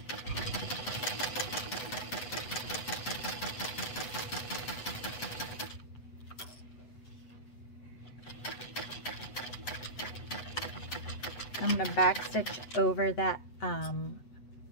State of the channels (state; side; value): late; right; 8.1 ms